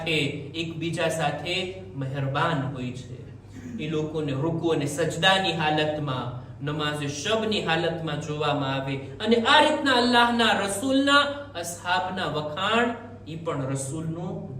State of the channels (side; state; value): both; identical; correlation 1.00